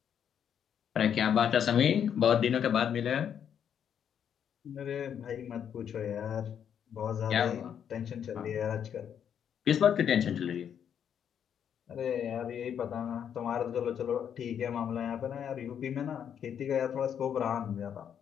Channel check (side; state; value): right; quieter; 8.6 dB